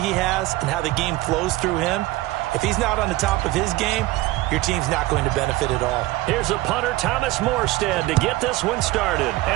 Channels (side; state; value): left; quieter; 18.4 dB